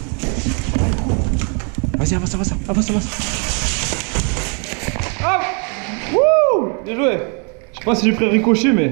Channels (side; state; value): left; quieter; 37.8 dB